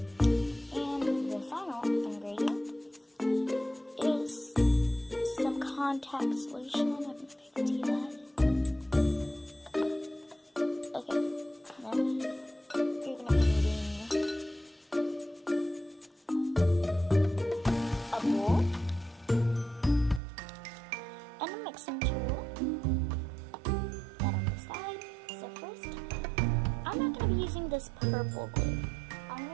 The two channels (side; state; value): left; drops out; at 20.2 s